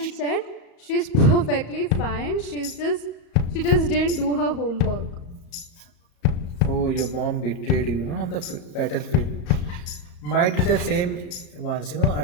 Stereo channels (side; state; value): right; late; 34 ms